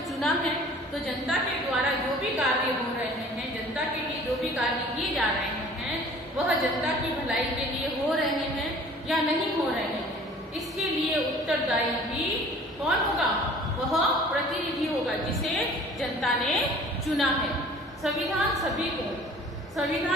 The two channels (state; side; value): normal; both; correlation 0.48